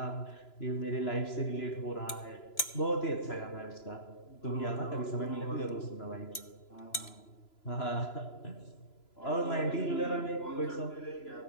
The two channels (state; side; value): late; right; 3.0 ms